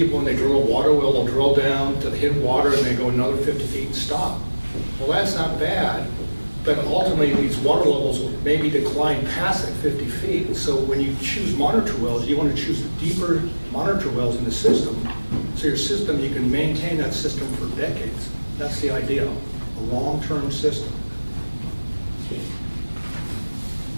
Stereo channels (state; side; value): inverted; both; correlation -1.00